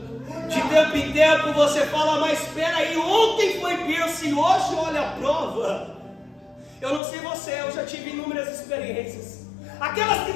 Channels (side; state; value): right; drops out; at 7.0 s